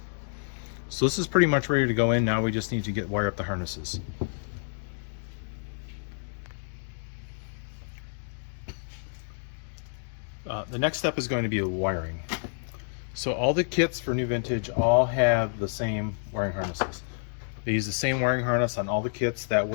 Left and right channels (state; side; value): silent; right; digital silence